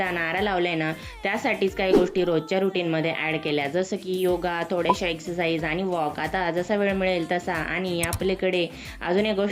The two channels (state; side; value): identical; both; correlation 1.00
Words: नारा लावलाय ना, त्यासाठीच काही गोष्टी रोजच्या रुटीनमध्ये ॲड केल्या. जसं की योगा, थोड्याशा एक्सरसाइज आणि वॉक. आता जसा वेळ मिळेल तसा. आणि आपल्याकडे अजून एक